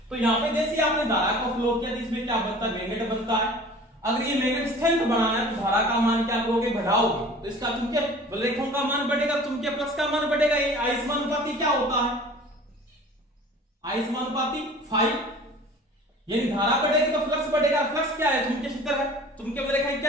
तो यहाँ पे जैसे आपने धारा को फ्लो किया, इसमें क्या बनता है, मैग्नेट बनता है। अगर ये मैग्नेट स्ट्रेंथ बढ़ाना है तो धारा का मान क्या करोगे, बढ़ाओगे, तो इसका चुंबकीय बलरेखाओं का मान बढ़ेगा, चुंबकीय फ्लक्स का मान बढ़ेगा। ये आयस्मानुपाती क्या होता है, आयस्मानुपाती 5, यानी धारा बढ़ेगी तो फ्लक्स बढ़ेगा। फ्लक्स क्या है, चुंबकीय क्षेत्र है, चुंबकीय बलरेखाएं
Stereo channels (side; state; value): both; normal; correlation 0.44